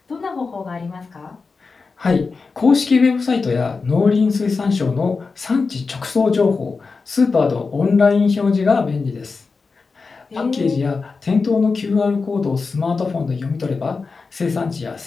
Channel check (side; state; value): right; quieter; 4.5 dB